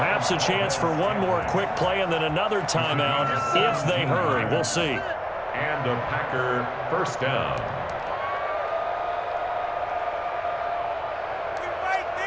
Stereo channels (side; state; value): both; identical; correlation 1.00